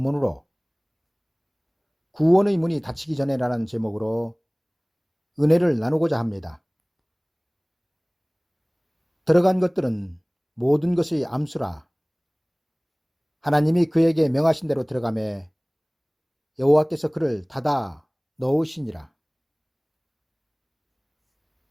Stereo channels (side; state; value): both; identical; correlation 1.00